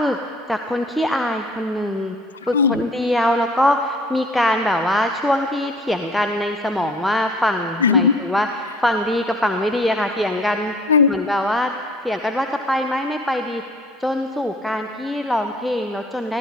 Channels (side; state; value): both; normal; correlation 0.50